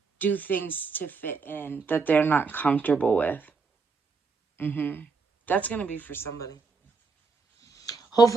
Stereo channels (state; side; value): quieter; left; 4.6 dB